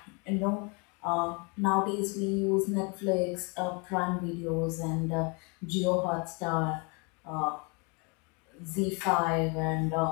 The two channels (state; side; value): quieter; right; 32.7 dB